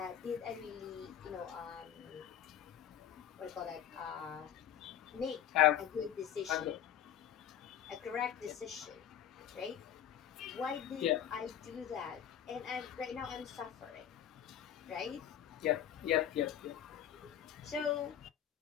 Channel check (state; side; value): quieter; right; 10.2 dB